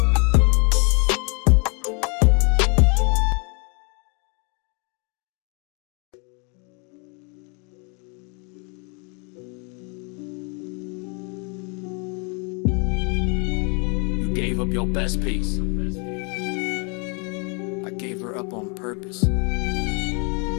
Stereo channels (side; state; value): right; quieter; 35.0 dB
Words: Gave up your best piece. I gave her up on purpose.